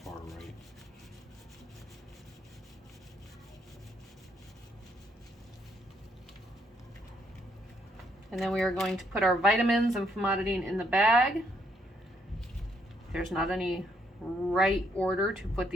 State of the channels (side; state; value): both; normal; correlation 0.73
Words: right. And then we are going to put our vitamins and famotidine in the bag. There's not any right order to put